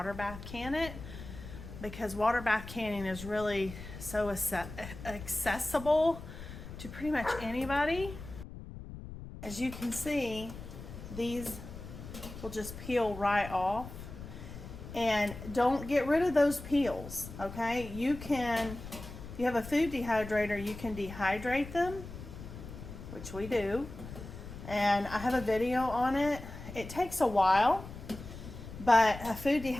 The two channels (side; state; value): left; noise; rumble, 12 dB below the sound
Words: bath can it, because water bath canning is really so accessible to pretty much anybody. As you can see, these will just peel right off. And don't get rid of those peels, okay? You can, if you have a food dehydrator, you can dehydrate them, which we do. And I have a video on it. It takes a while, but a food